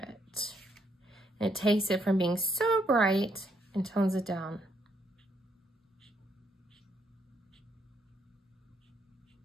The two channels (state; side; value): normal; both; correlation 0.74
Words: And it takes it from being so bright and tones it down.